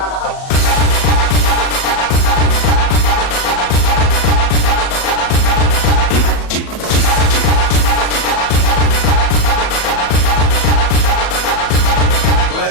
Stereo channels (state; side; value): late; right; 37 ms